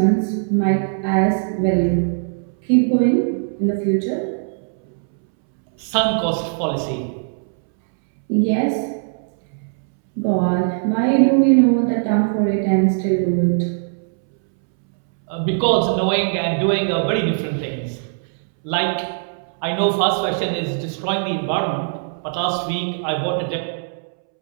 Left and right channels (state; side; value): silent; left; 66 dB below the other